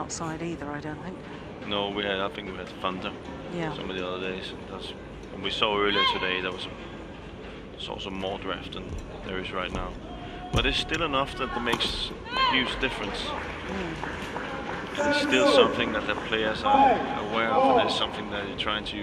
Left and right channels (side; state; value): both; identical; correlation 1.00